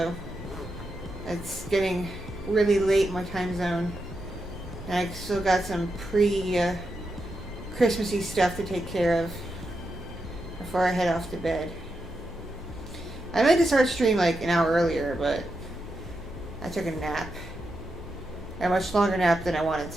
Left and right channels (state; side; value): normal; both; correlation 0.86